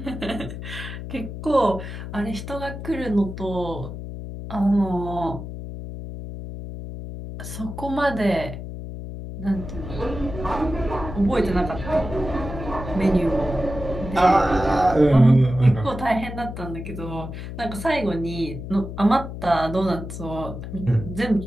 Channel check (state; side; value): noise; left; hum, 9 dB below the sound